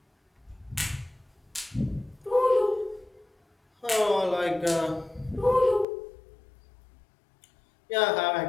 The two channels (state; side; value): drops out; right; at 5.9 s